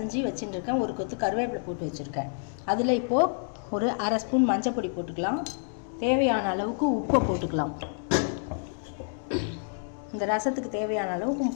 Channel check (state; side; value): silent; right; digital silence